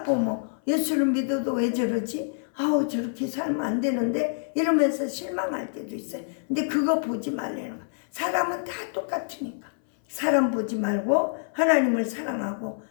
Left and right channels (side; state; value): right; silent; 59 dB below the other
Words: 보면 예수를 믿어도 왜 저러지? 저렇게 살면 안 되는데 이러면서 실망할 때도 있어요. 근데 그거 보지 말라는 거야. 사람은 다 똑같으니까 사람 보지 말고 하나님을 사랑하고